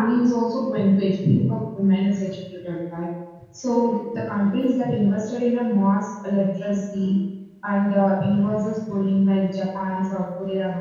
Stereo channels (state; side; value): identical; both; correlation 1.00